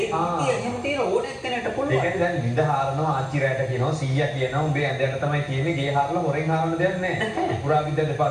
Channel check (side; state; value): both; identical; correlation 1.00